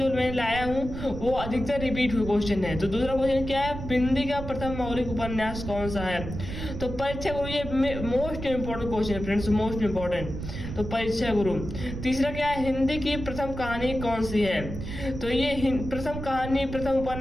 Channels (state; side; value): noise; right; rumble, 8 dB below the sound